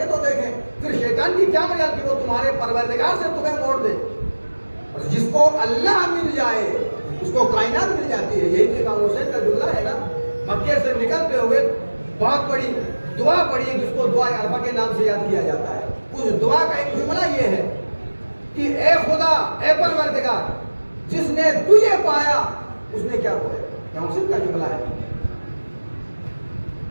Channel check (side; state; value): both; inverted; correlation -1.00